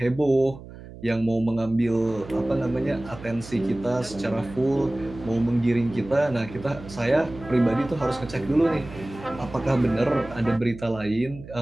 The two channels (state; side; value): noise; right; hum, 16 dB below the sound